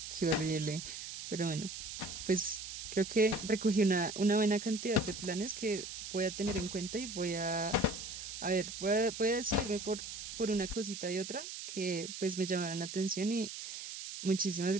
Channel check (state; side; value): noise; right; hiss, 8 dB below the sound